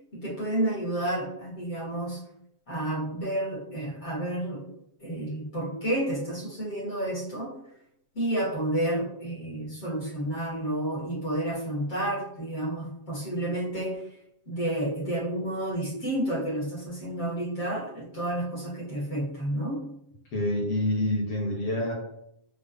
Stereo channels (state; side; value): late; right; 7.5 ms